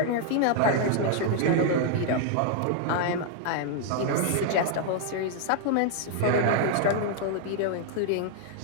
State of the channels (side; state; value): both; different; correlation 0.00